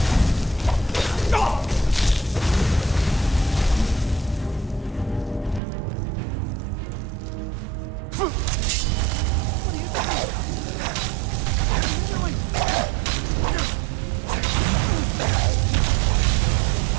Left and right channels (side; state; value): left; drops out; at 5.6 s